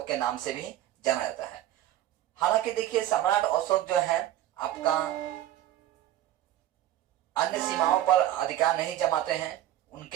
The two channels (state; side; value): quieter; left; 13.1 dB